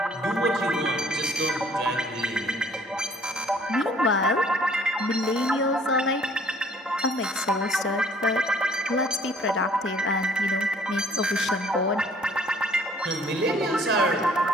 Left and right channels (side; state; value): both; normal; correlation 0.57